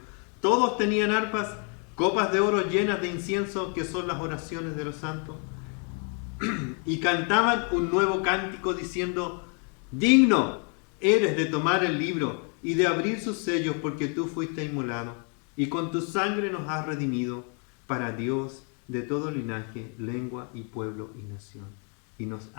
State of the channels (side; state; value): right; quieter; 39.7 dB